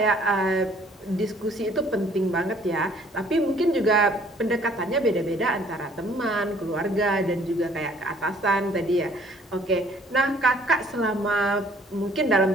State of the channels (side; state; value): both; normal; correlation 0.58